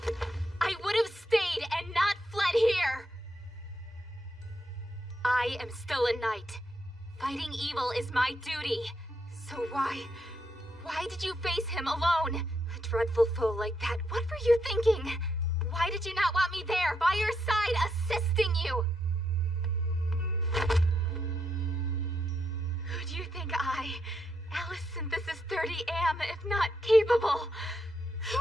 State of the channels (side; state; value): both; normal; correlation 0.80